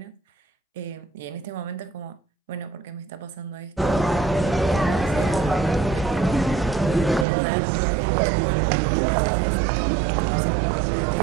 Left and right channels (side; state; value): left; drops out; at 7.2 s